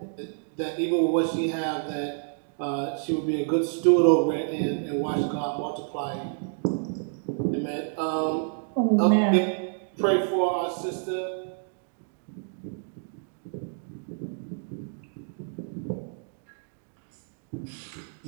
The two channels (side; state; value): left; silent; 59 dB below the other